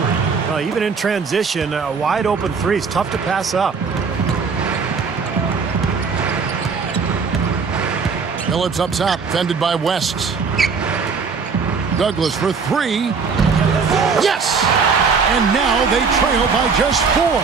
Even in transition, a wide open 3 is tough to pass up. Billups up top, fended by West. Douglas for 3. Yes! And now they trail by just 4.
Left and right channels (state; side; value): quieter; left; 5.3 dB